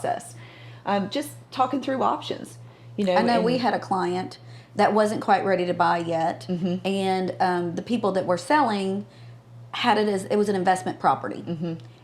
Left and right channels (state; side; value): identical; both; correlation 1.00